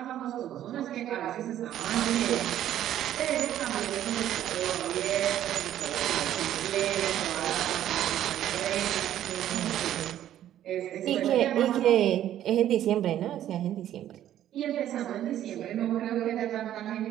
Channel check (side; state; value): left; quieter; 11.8 dB